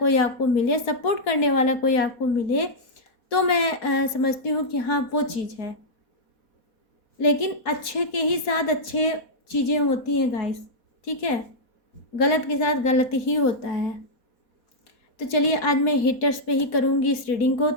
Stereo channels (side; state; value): right; late; 4.2 ms